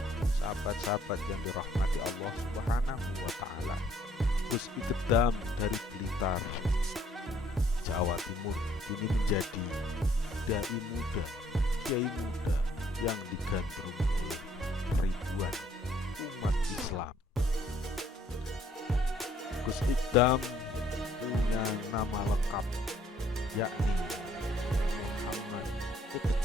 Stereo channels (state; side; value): normal; both; correlation 0.64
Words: Sahabat-sahabat yang dirahmati Allah Subhanahu wa Ta'ala, Gus Ikdam dari Blitar, Jawa Timur, kini menjadi dai muda, kiai muda yang digandrungi oleh ribuan umat Islam. Gus Ikdam punya nama lengkap, yakni Muhammad